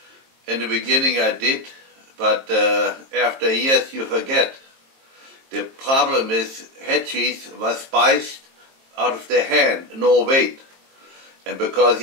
In the beginning I did, but after years you forget. The problem is Headcheese was spiced out of the hand, no weight. And because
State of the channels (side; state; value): left; late; 22 ms